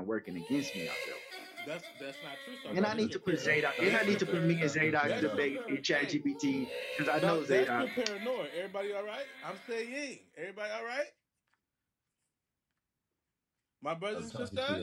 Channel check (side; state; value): both; identical; correlation 1.00